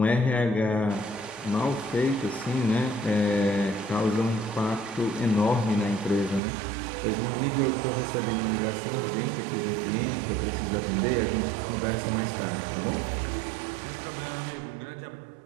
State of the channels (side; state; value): left; drops out; at 6.4 s